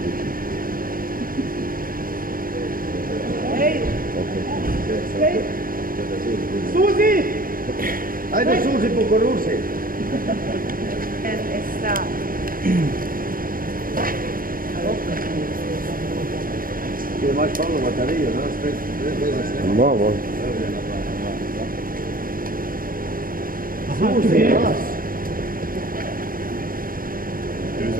kličem. Suzi! Ajde Suzi po korusi. Esta. Ti imaš polno baterijo, no? Spet snema. Imamo. Suzi, glas.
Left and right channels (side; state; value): left; late; 0.41 ms